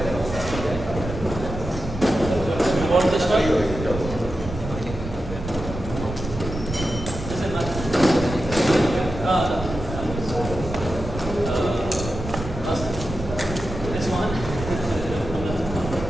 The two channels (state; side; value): noise; right; rumble, 8 dB below the sound